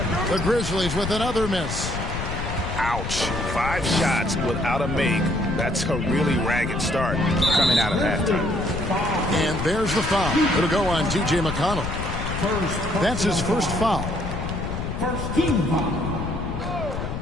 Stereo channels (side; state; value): left; noise; rumble, 5 dB below the sound